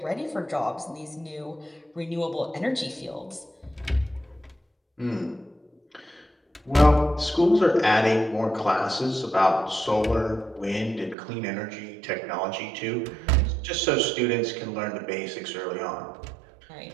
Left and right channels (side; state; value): left; drops out; at 11.2 s